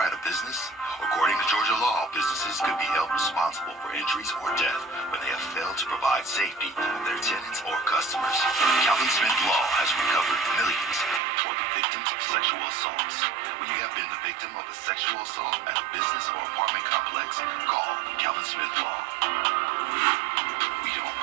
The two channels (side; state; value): left; drops out; at 11.2 s